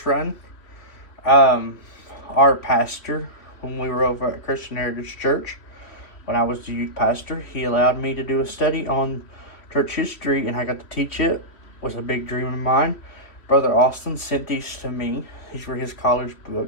run, our pastor, when we were over at Christian Heritage Church, when I was the youth pastor, he allowed me to do a study on church history, and I got to teach it. It was a big dream of mine. Brother Austin sent these to me. These were his college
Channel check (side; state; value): right; late; 3.1 ms